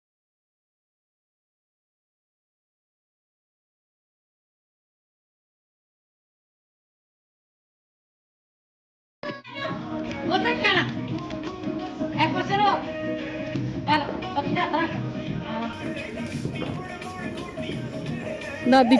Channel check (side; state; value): both; identical; correlation 1.00